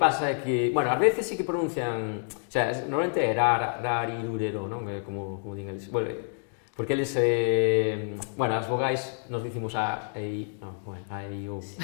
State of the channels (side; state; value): right; silent; digital silence